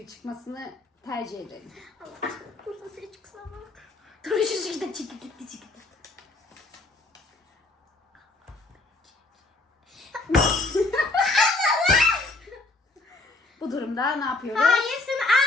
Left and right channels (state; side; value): quieter; right; 3.1 dB